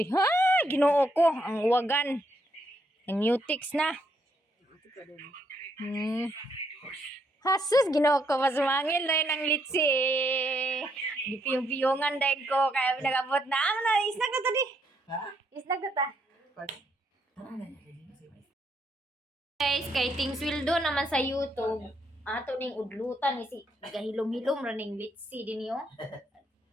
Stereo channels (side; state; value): both; normal; correlation 0.75